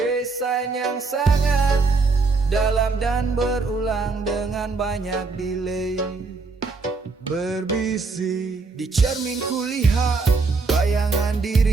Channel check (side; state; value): left; quieter; 4.1 dB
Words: yang sangat dalam dan berulang dengan banyak delay. Berbisik di cermin kulihat bayangan